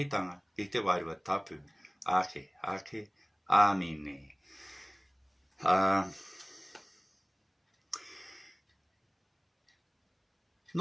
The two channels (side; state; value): both; identical; correlation 1.00